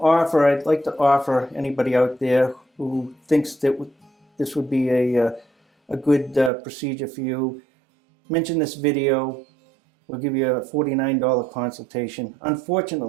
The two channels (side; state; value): left; drops out; at 6.5 s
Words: offer, I'd like to offer anybody out there who thinks that this would be a good procedure for you, mention this video. We'll give you a $49 consultation.